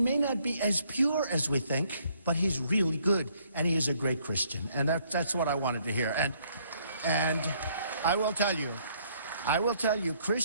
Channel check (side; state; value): both; inverted; correlation -0.66